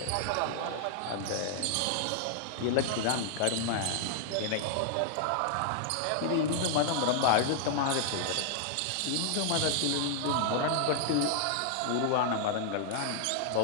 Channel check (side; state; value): both; different; correlation -0.01